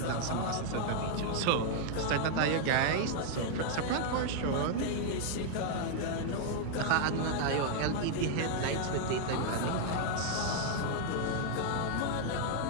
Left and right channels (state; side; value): different; both; correlation 0.00